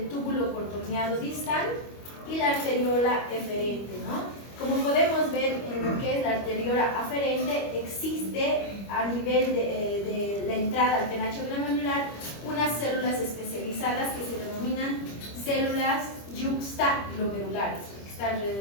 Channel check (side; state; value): right; late; 25 ms